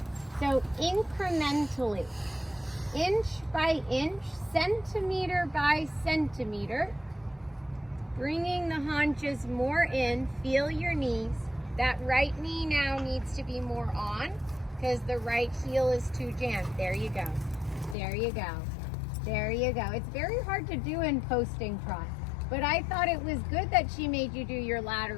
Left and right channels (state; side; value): drops out; right; at 17.9 s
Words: So incrementally, inch by inch, centimeter by centimeter, bringing the haunches more in. Feel your knees. That right knee now needs to be more on because the right heel is too jammed. There you go. There you go. There you go. It's very hard to do in posting trot, but I thought it was good that she made you do your